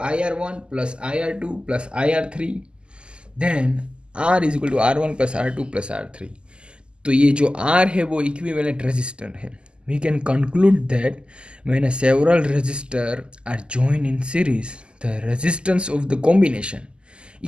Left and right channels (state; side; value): late; left; 0.050 ms